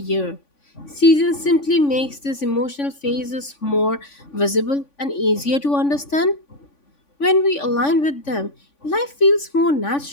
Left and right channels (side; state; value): right; late; 3.5 ms